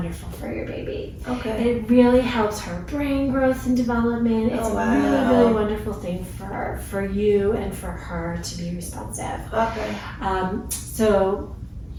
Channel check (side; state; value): both; identical; correlation 1.00